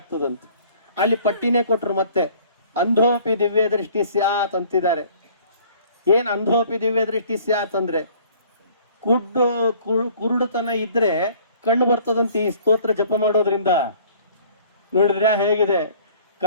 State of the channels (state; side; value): inverted; both; correlation -0.54